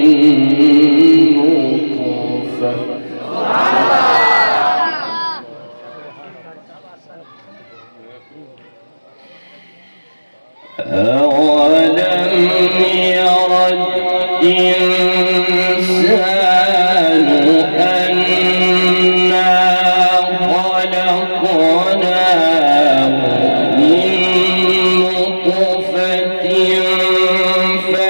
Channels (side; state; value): both; inverted; correlation -1.00